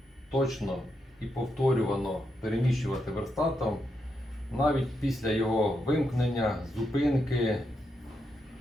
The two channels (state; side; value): normal; both; correlation 0.83